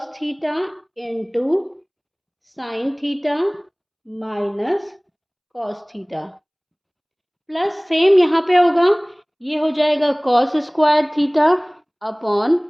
theta into sine theta minus cos theta, plus same यहाँ पे होगा, ये हो जाएगा cos square theta upon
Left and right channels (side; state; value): both; identical; correlation 1.00